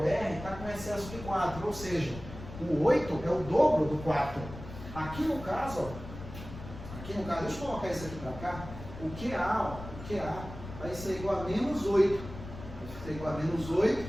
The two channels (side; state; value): left; noise; rumble, 12 dB below the sound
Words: R, está com excesso de 4, ou seja, o 8 é o dobro do 4. Aqui no caso, deixa eu colocar isso aqui para cá, o QA vai ser igual a menos 8. Vai ser igual a menos 8.